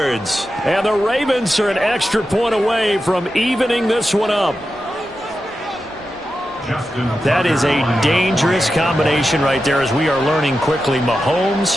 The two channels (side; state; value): both; normal; correlation 0.90